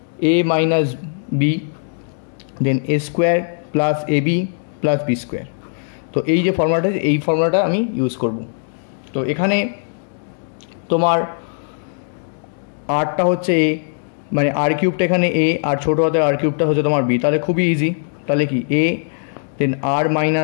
a minus b, then a square plus a b plus b square. তো এই যে ফর্মুলাটা, এই ফর্মুলাটা আমি ইউজ করব। তো এখানে তোমার আরটা হচ্ছে এ, মানে আর কিউবটা এখানে এ আর ছোটো হাতের আর কিউবটা হচ্ছে তোমার বি। তাহলে খুবই ইজি। তাহলে কি a, then r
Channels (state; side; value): silent; right; digital silence